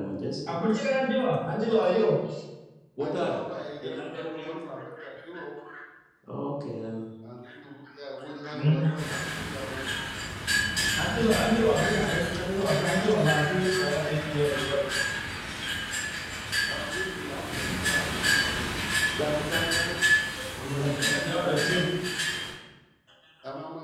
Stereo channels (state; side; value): identical; both; correlation 1.00